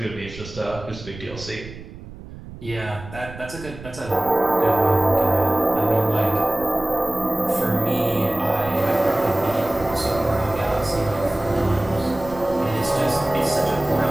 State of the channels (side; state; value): right; noise; rumble, 15 dB below the sound